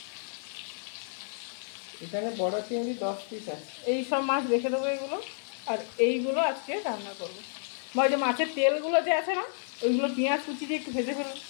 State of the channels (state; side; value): silent; right; digital silence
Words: এখানে বড় চিংড়ি 10 পিস আছে। এই সব মাছ রেখে দেবো এগুলো, আর এইগুলো আজকে রান্না করবো। বা ওই যে মাছের তেলগুলো যে আছে না, ওইগুলো পেঁয়াজ কুচি দিয়ে একটু ভেজে ফেলবো,